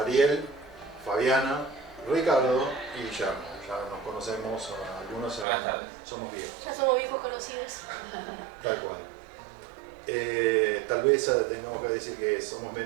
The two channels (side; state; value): left; drops out; at 5.5 s